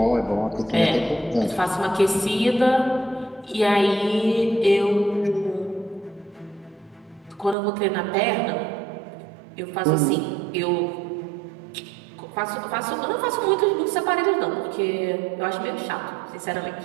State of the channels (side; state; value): left; drops out; at 7.6 s